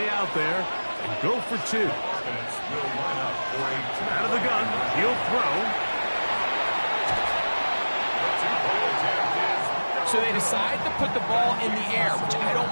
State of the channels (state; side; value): inverted; both; correlation -1.00